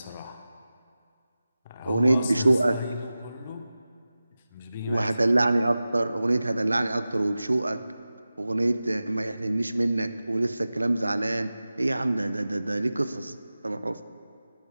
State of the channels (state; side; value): inverted; both; correlation -0.96